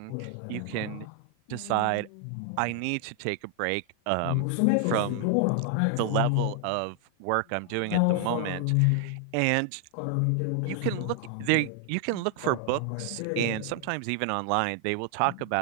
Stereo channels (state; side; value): different; both; correlation 0.00